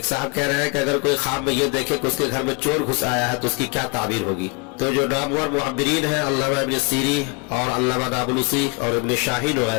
صاحب کہہ رہے ہیں کہ اگر کوئی خواب میں یہ دیکھے کہ اس کے گھر میں چور گھس آیا ہے تو اس کی کیا تعبیر ہوگی؟ تو جو نامور معبرین ہیں، علامہ ابن سیری اور علامہ نابلسی اور ابن شاہین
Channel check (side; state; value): right; quieter; 31.3 dB